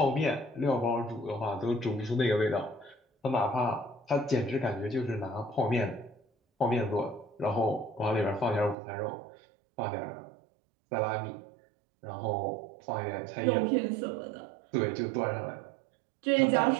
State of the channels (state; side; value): drops out; left; at 8.8 s